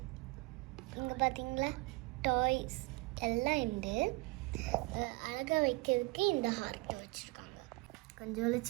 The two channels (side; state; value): left; quieter; 25.0 dB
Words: இங்கே பார்த்தீங்களா டாய்ஸ் எல்லாம் உண்டு. அழகாக வைக்கிறதுக்கு இந்த ஹார்ட்டை வச்சுருக்காங்க. கொஞ்சம்